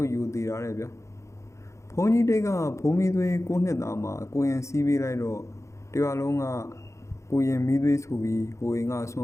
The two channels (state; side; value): late; right; 0.14 ms